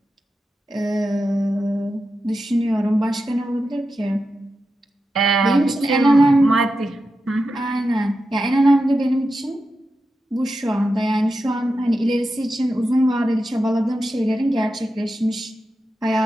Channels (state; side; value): normal; both; correlation 0.90